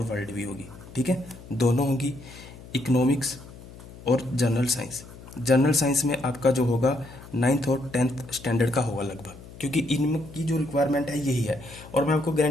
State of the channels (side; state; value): left; noise; hum, 17 dB below the sound